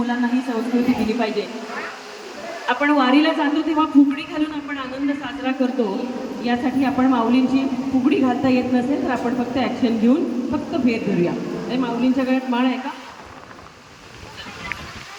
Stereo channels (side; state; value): both; identical; correlation 1.00